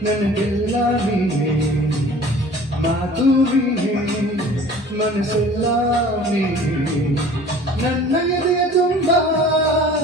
ನನಗೆಲ್ಲ ನೀನೇ ಮಾತು ನೀನೇ ಮನಸ್ಸೆಲ್ಲ ನೀನೇ ನನ್ನ ಎದೆಯ ತುಂಬ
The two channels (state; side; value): normal; both; correlation 0.46